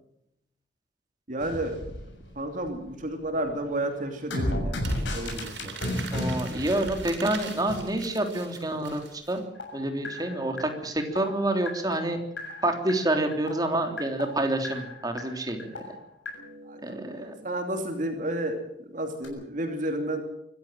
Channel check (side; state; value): both; normal; correlation 0.50